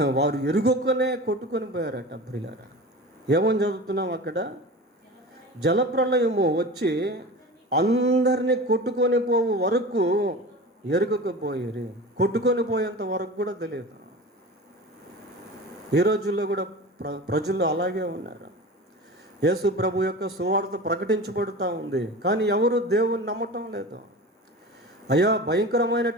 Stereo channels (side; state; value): both; normal; correlation 0.33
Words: వారు ఎరుగొక్కనే కొట్టుకొని పోయారట. ప్రియులారా, ఏమని చదువుతున్నాం అక్కడ? జలప్రళయము వచ్చి అందరినీ కొట్టుకొని పోవు వరకు ఎరుగకపోయేది. కొట్టుకొని పోయేంత వరకు కూడా తెలియదు. ఈ రోజుల్లో కూడా ప్రజలు అలాగే ఉన్నారు. యేసు ప్రభు యొక్క సువార్త ప్రకటించబడుతూ ఉంది, కానీ ఎవరు దేవుని నమ్మటం లేదు. అయ్యా,